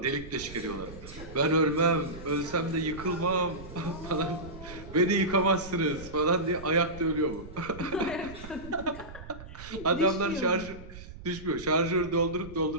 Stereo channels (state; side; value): noise; right; rumble, 15 dB below the sound